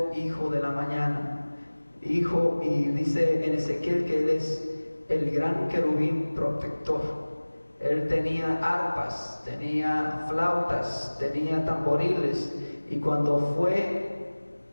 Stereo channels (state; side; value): inverted; both; correlation -1.00